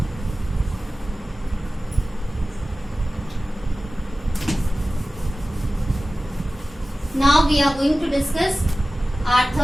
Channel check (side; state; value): both; normal; correlation 0.96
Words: Now we are going to discuss our